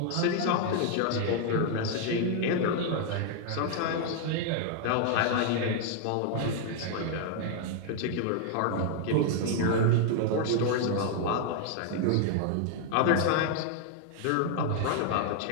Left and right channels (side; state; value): both; different; correlation 0.00